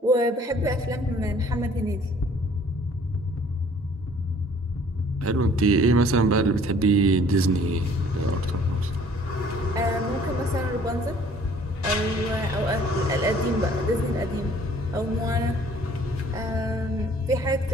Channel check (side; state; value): both; normal; correlation 0.56